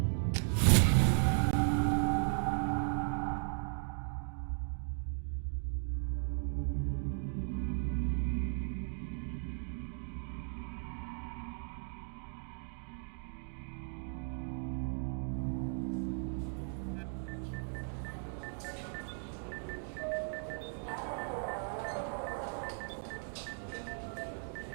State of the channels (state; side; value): silent; left; 53 dB below the other